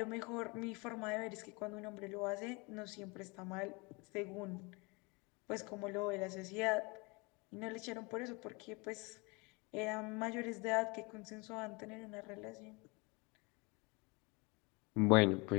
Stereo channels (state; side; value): quieter; right; 28.2 dB